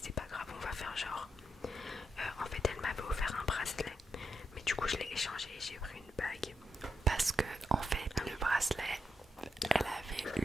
c'est pas grave, on va faire genre. En fait elle m'avait offert un bracelet, mais du coup je l'ai échangé et j'ai pris une bague. Parce que en fait le bracelet, elle avait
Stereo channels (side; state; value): both; normal; correlation 0.83